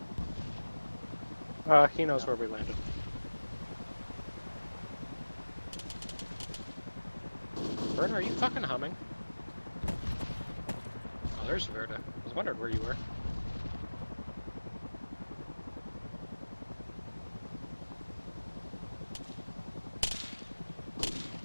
He knows where we landed. Verda, are you fucking humming? Oh, there's Verda. I was wondering where you were.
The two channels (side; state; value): both; inverted; correlation -1.00